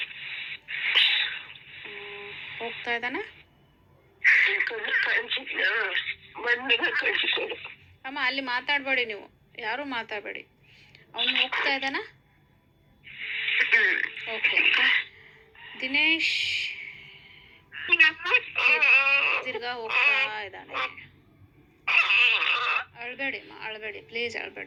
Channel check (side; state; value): both; identical; correlation 1.00